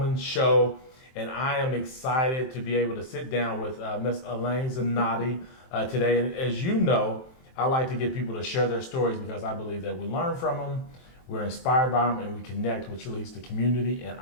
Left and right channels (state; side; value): late; right; 23 ms